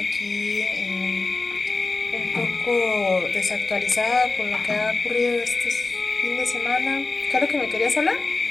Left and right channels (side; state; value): right; quieter; 3.6 dB